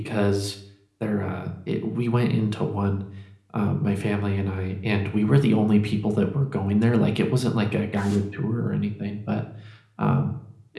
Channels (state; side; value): identical; both; correlation 1.00